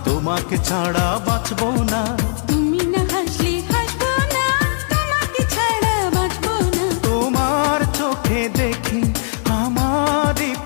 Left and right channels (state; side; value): silent; right; 64 dB below the other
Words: তোমাকে ছাড়া বাঁচবো না। তুমি না হাসলে হাসবো না, তোমাকে ছাড়া বাঁচবো না। তোমার চোখে দেখি আমারই